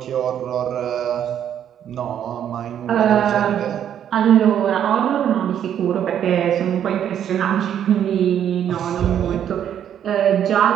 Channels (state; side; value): quieter; left; 9.7 dB